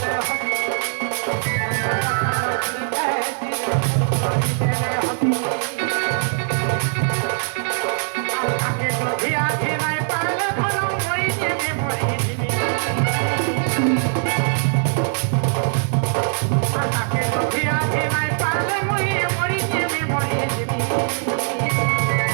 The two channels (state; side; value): silent; left; digital silence